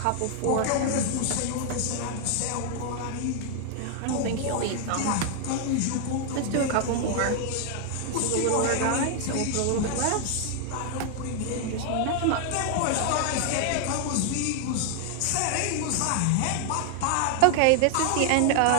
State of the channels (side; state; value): both; different; correlation 0.00